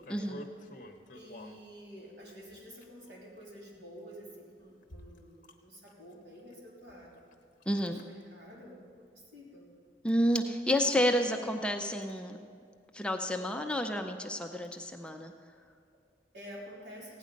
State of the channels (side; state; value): both; normal; correlation 0.70